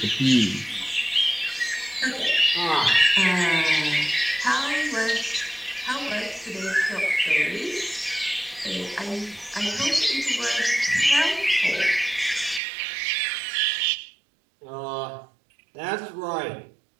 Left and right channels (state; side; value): drops out; left; at 12.6 s